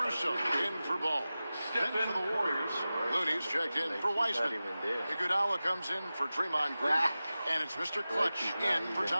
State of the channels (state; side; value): inverted; both; correlation -0.95